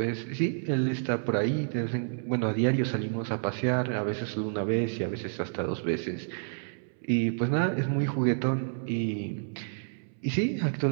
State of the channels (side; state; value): left; silent; 58 dB below the other